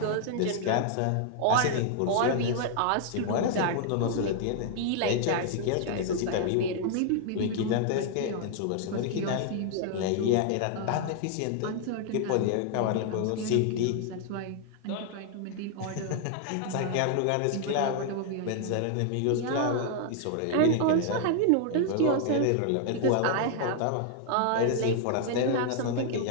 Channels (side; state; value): both; different; correlation 0.00